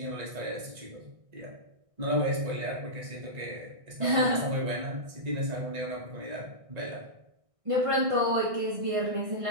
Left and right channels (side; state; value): left; late; 1.6 ms